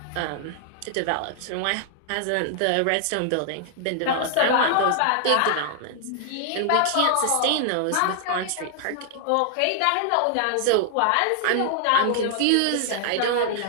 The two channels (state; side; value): different; both; correlation -0.01